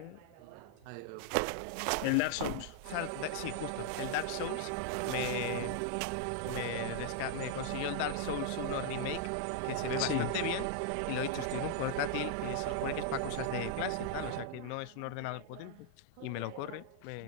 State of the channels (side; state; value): both; different; correlation -0.01